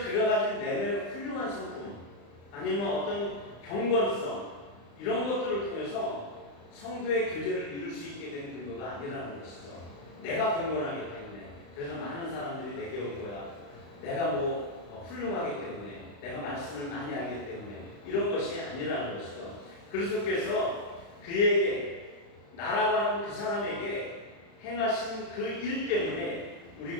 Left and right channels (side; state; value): right; late; 35 ms